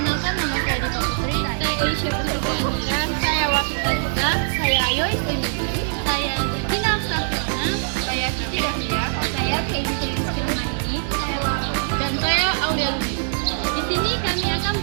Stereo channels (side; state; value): left; silent; 64 dB below the other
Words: nama saya Diva Putri, saya Aisyah Putri Kehamilan, saya Wafita Juga, saya Ayo Istimewa, saya Zatina Afsafirna, saya Cici Dahlia, saya Keiji Rizky Rahmani, saya Laura, dan saya Aulia Lubis. Di sini kami akan